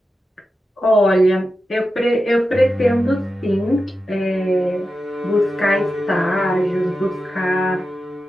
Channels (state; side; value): normal; both; correlation 0.91